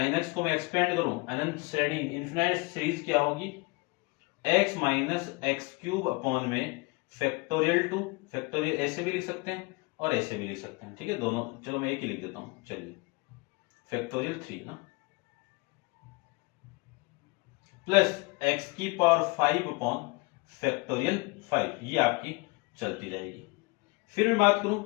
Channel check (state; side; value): quieter; right; 26.6 dB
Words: एक्स को मैं एक्सपेंड करूं अनंत श्रेणी इन्फिनाइट सीरीज क्या होगी x minus x cube upon में फैक्टोरियल 2, फैक्टोरियल ऐसे भी लिख सकते हैं और ऐसे भी लिख सकते हैं, ठीक है, दोनों। चलो मैं एक ही लिख देता हूं, चलिए फैक्टोरियल 3 ना प्लस x की पावर 5 अपॉन फैक्टोरियल 5, ये आपकी चलती रहेगी। फिर मैं बात करूं